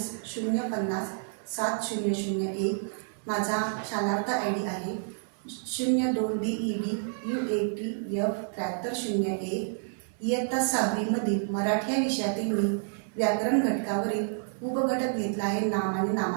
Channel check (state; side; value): silent; left; 58 dB below the other